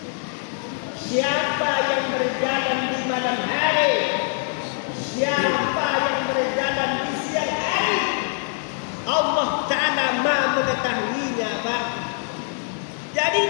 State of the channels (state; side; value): silent; right; 63 dB below the other